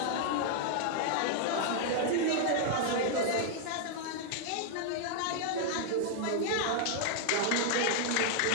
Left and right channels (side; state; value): both; different; correlation 0.00